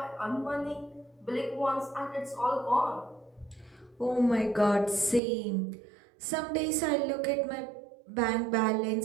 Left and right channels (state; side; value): drops out; left; at 5.2 s